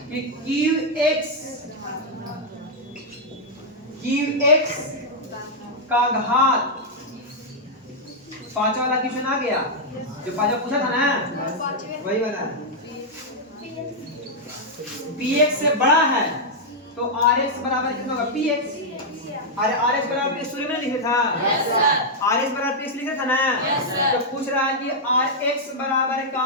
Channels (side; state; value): both; normal; correlation -0.04